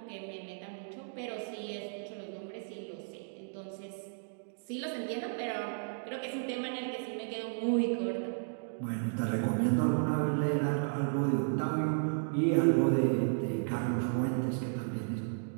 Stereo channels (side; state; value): left; silent; digital silence